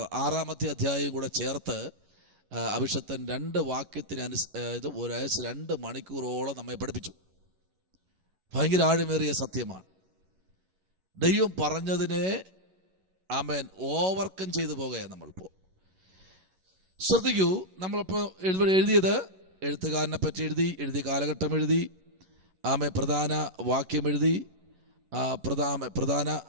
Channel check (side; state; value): left; late; 11 ms